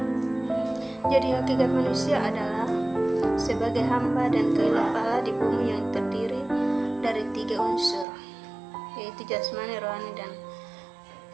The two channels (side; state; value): left; drops out; at 8.1 s